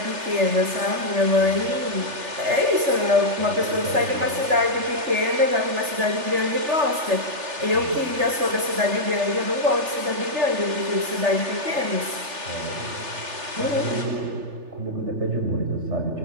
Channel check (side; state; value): left; late; 3.4 ms